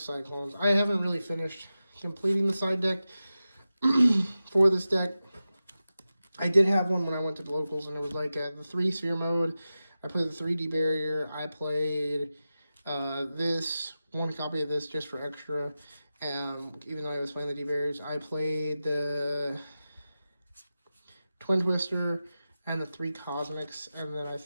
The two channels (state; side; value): inverted; both; correlation -0.93